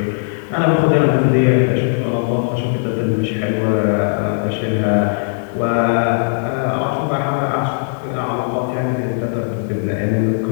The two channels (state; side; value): silent; right; 67 dB below the other